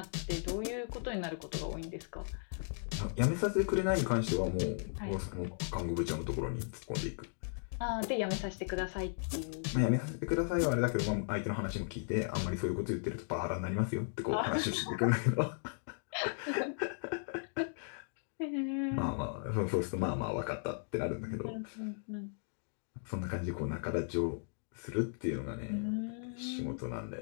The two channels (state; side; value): silent; right; digital silence